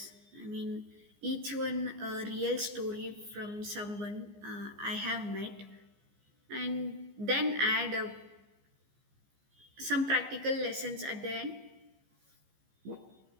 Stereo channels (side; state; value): left; late; 15 ms